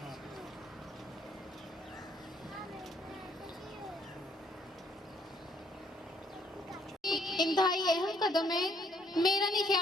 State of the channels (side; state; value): both; normal; correlation 0.66